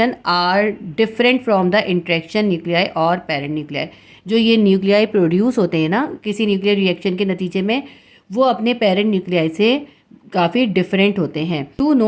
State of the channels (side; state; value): both; identical; correlation 1.00